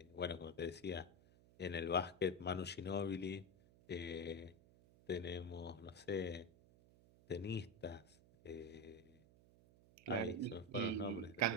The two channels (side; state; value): right; noise; hum, 25 dB below the sound